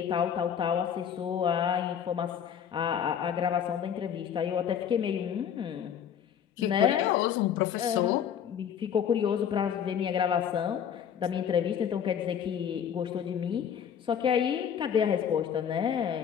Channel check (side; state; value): right; quieter; 8.5 dB